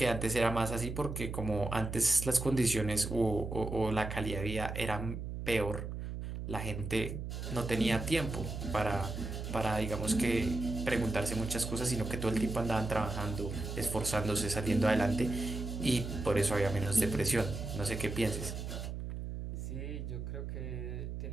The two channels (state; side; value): noise; right; hum, 6 dB below the sound